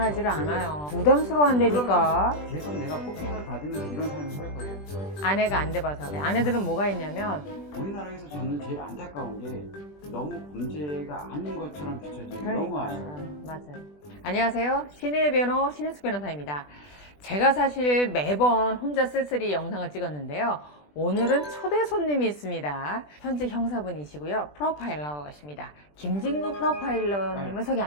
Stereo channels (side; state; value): right; late; 20 ms